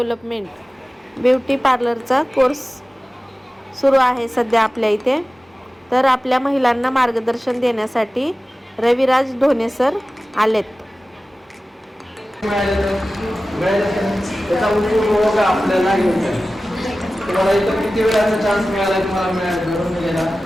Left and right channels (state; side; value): normal; both; correlation 0.96